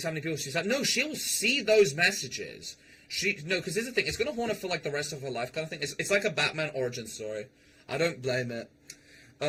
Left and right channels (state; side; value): identical; both; correlation 1.00